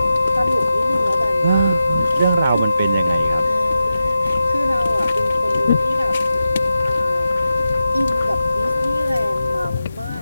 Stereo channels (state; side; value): inverted; both; correlation -0.91